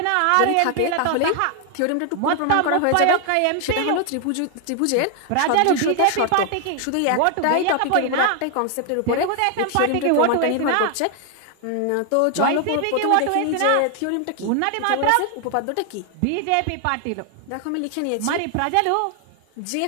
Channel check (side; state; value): both; different; correlation 0.00